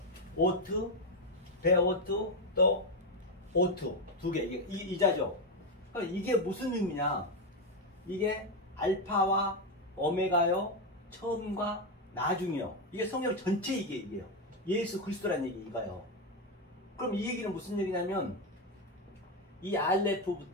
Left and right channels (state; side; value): normal; both; correlation 0.07